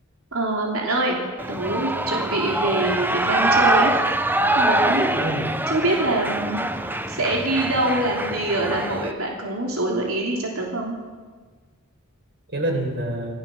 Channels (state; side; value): normal; both; correlation 0.29